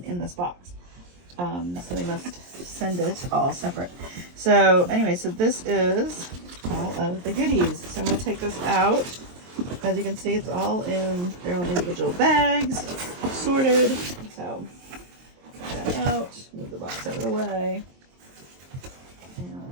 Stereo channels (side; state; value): left; late; 23 ms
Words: in this box. So they must send it all separate. So anyway, so this is all of the goodies. So I'm going to take this out. As you can see, it's all in their own individual bags, sorted. So take that out, move the box out of the way,